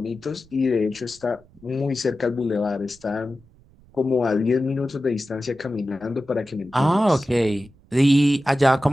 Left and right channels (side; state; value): right; noise; rumble, 28 dB below the sound